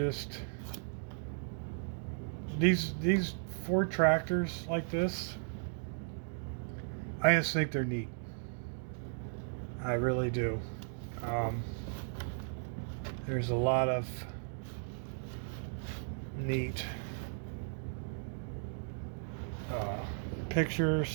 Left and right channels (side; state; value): left; silent; digital silence